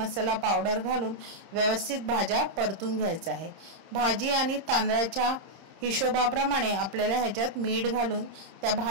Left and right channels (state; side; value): late; left; 30 ms